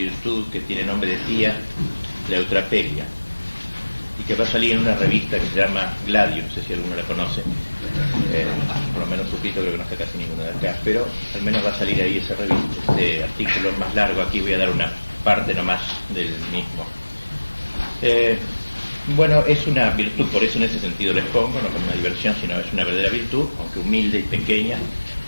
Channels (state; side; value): inverted; both; correlation -1.00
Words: que tiene nombre de tía, la eutrapelia, y que va a salir en una revista que se llama Gladio, no sé si alguno la conoce, por lo menos suscrito, creo que no está casi ninguno de acá, pero al menos va a salir ahí esa revista, este artículo más largo. Aquí voy a dar una parte nomás del mismo. Bueno, es una virtud, por eso en ese sentido les pongo, no como una diversión, sino es una verdadera virtud, aunque humilde y pequeña,